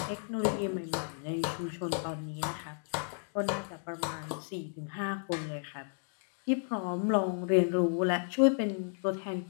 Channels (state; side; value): silent; right; digital silence